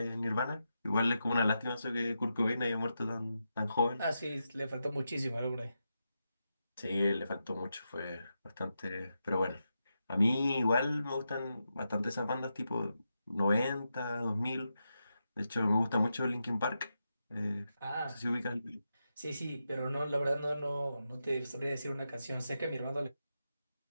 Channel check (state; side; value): inverted; both; correlation -0.87